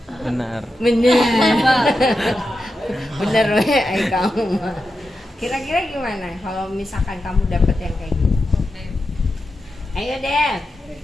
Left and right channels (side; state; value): both; normal; correlation 0.89